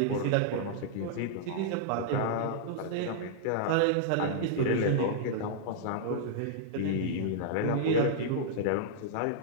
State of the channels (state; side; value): different; both; correlation -0.02